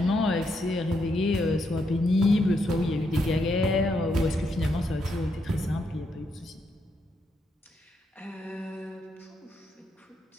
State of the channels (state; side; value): normal; both; correlation 0.79